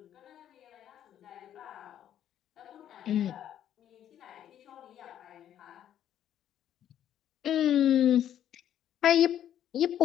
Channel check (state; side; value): quieter; right; 10.6 dB